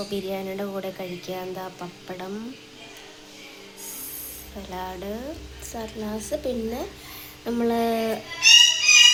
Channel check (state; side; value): identical; both; correlation 1.00